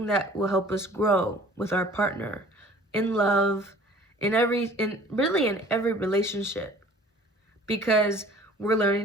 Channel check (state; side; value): normal; both; correlation 0.50